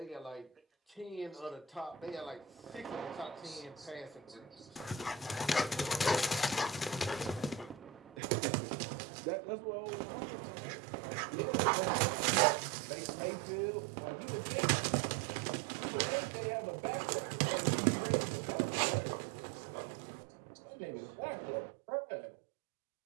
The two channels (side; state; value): left; drops out; at 8.2 s